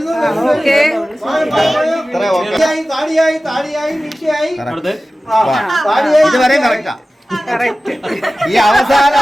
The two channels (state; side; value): normal; both; correlation 0.96